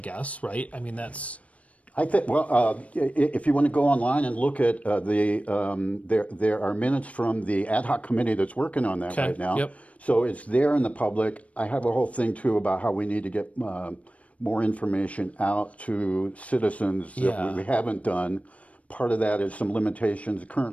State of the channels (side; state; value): right; late; 0.066 ms